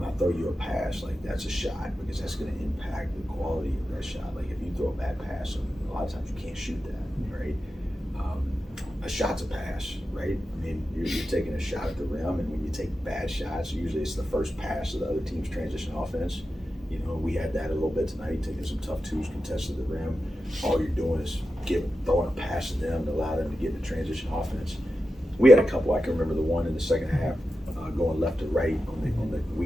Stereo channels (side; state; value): both; normal; correlation 0.91